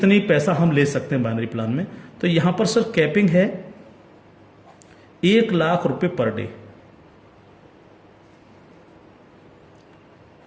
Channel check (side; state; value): both; identical; correlation 1.00